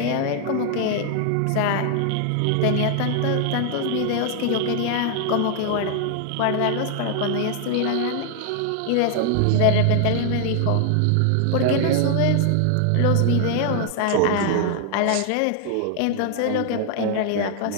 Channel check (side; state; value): both; different; correlation 0.00